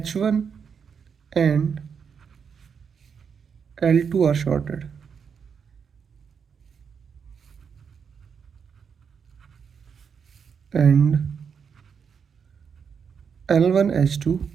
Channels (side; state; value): left; quieter; 6.6 dB